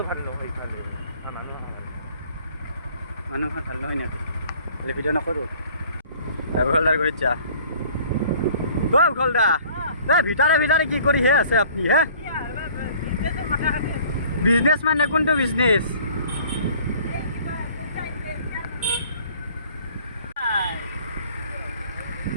ভাল নহয় মানুহ ভাল নহয় নাকি ভিডিঅ' নকৰোঁ উখলদাৰ কৰি যা উখলদা ভিতৰে কি কৰি হে আছে আপনি হে বিজনেস মানে কোনটো বিজনেস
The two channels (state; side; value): inverted; both; correlation -0.53